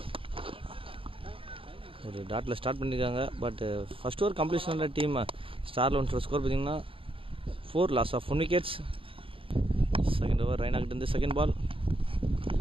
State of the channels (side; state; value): left; late; 0.26 ms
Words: ஒரு டாட்டில் ஸ்டார்ட் பண்ணியிருக்காங்க, பட் ஃபர்ஸ்ட் ஓவர் கம்ப்ளீஷனோட டீம் ஸ்டார் 11 ஸ்கோர் பார்த்தீங்கன்னா 4 loss of 1 wickets. Second over Raina கிட்ட இருந்து second ball,